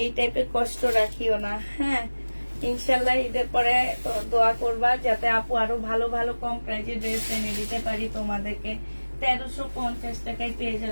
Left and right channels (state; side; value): inverted; both; correlation -1.00